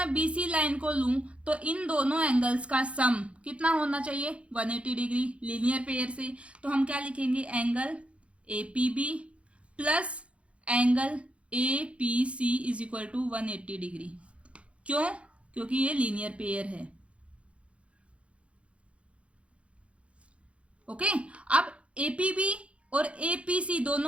BC लाइन को लूं तो इन दोनों एंगल्स का सम कितना होना चाहिए? 180 डिग्री लीनियर पेयर से। तो हम क्या लिखेंगे? Angle APB plus angle APC is equal to 180 degree. क्यों? क्योंकि ये लीनियर पेयर है। ओके, अब APB और APC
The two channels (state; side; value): late; left; 0.061 ms